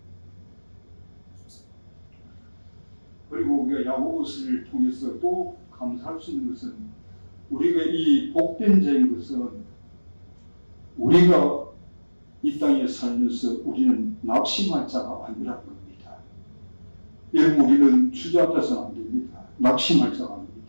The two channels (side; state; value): both; inverted; correlation -1.00